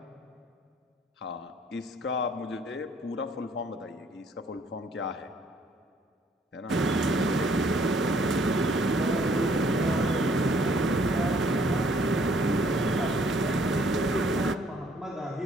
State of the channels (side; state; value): both; normal; correlation 0.62